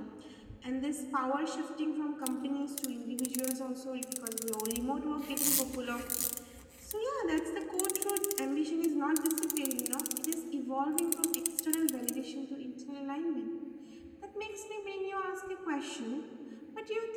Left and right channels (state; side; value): identical; both; correlation 1.00